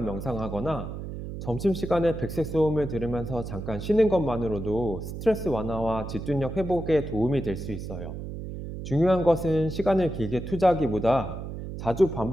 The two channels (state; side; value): noise; right; hum, 8 dB below the sound